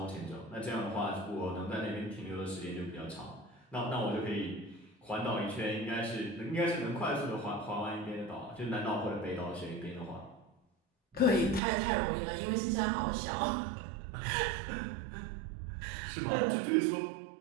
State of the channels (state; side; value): drops out; left; at 11.6 s